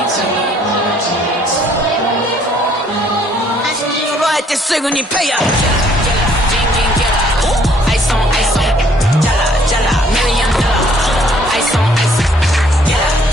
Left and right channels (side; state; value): both; normal; correlation 0.63